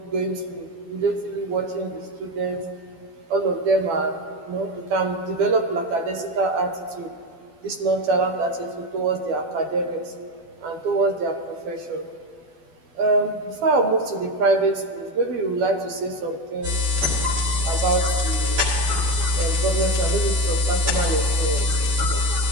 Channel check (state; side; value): late; left; 12 ms